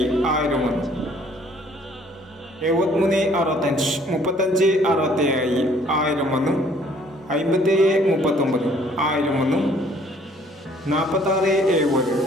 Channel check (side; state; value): both; normal; correlation 0.59